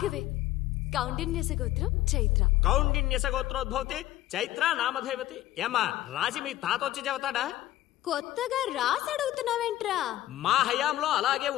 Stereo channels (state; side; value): quieter; right; 14.9 dB